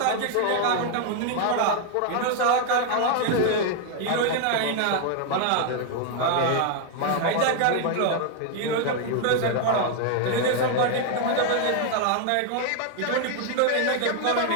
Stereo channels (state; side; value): different; both; correlation 0.01